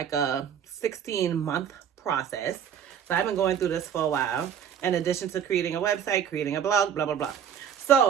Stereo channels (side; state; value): left; quieter; 8.5 dB